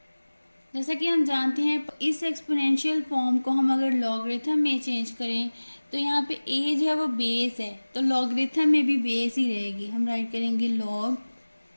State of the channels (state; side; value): inverted; both; correlation -1.00